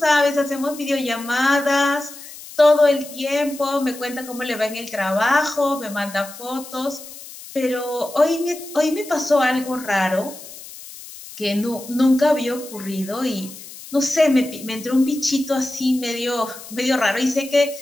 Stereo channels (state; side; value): noise; left; hiss, 15 dB below the sound